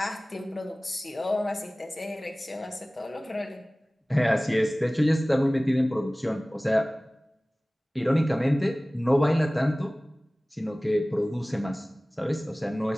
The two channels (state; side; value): normal; both; correlation 0.98